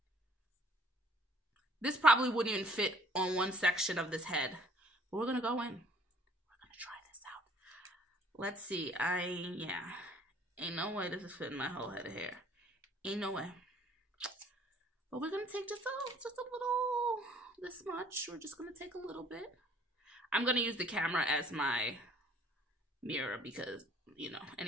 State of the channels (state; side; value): normal; both; correlation 0.57